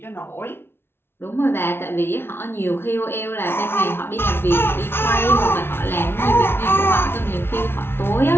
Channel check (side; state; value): right; late; 0.11 ms